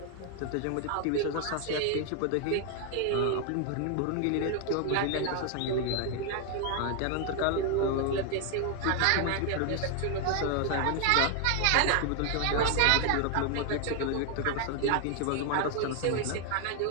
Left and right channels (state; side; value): different; both; correlation 0.00